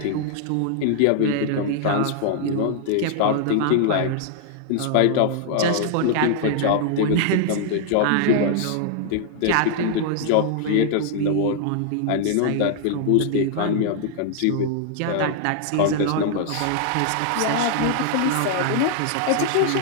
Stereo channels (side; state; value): both; different; correlation 0.00